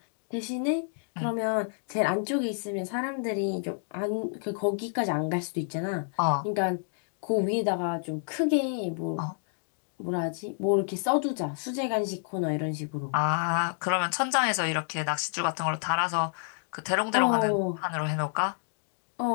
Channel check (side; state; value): right; silent; digital silence